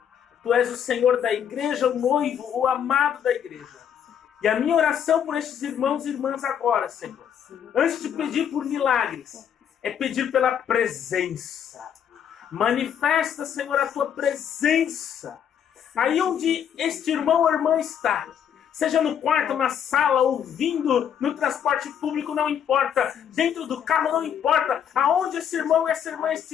tu és o Senhor da igreja, o noivo, o amado da igreja. E a minha oração por estes irmãos e irmãs agora, Senhor, antes de pedir por milagres, é pedir pela presença. Manifesta, Senhor, a tua presença. Aí onde este irmão ou irmã está, seja no quarto, na sala, ouvindo, no transporte público, não importa, dentro do carro, não importa, aonde esse irmão e essa irmã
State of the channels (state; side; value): quieter; right; 8.7 dB